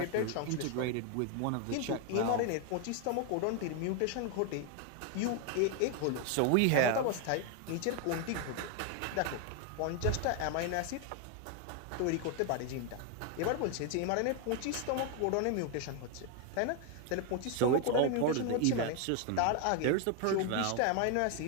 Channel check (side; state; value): both; different; correlation 0.01